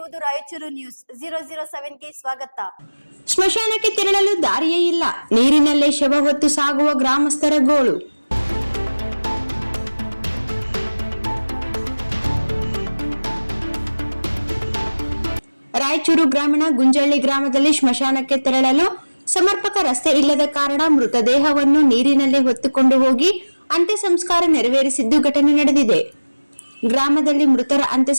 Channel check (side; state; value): both; inverted; correlation -1.00